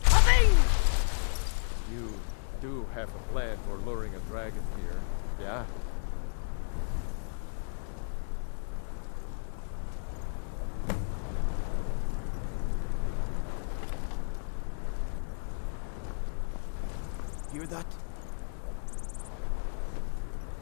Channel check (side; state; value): right; silent; digital silence